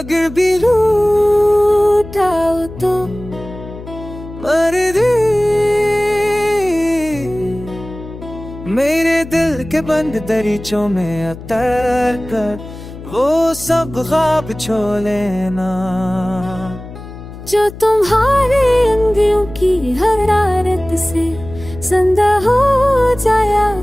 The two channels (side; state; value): left; noise; hum, 14 dB below the sound